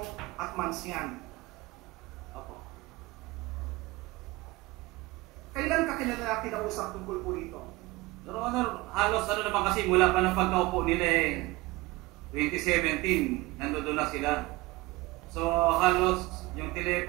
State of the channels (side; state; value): left; quieter; 21.0 dB